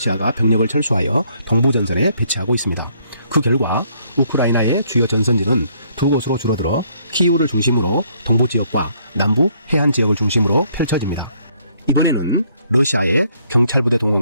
병력을 철수하여 동부전선에 배치하고 있습니다. 그 결과 우크라이나의 주요 전선지는 두 곳으로 줄어들어 키우를 중심으로 동부 지역과 남부 해안 지역을 중심으로 펼쳐집니다. 이번에는 러시아의 경찰부대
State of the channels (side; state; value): both; inverted; correlation -0.67